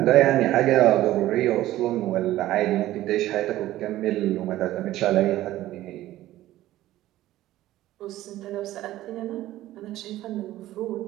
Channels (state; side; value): quieter; left; 14.9 dB